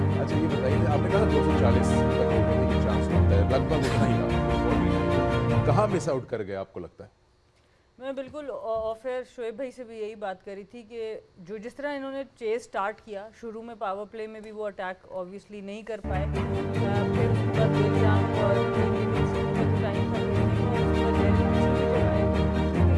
अच्छा ये बताइए, आपने कहा 240 तक होने की चांस बनता है, लगभग उतना ही रहा, कहाँ मिस आउट कर गए आपको लगता है? मैं बिल्कुल ऑफ एयर शोएब भाई से भी यही बात करी थी कि जो जिस तरह इन्होंने चेस स्टार्ट किया, शुरू में पावर प्ले में भी वो अटैक ऑब्वियसली नहीं कर पाए, फिर उसके बाद बेलजाम और टाइम था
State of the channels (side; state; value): both; identical; correlation 1.00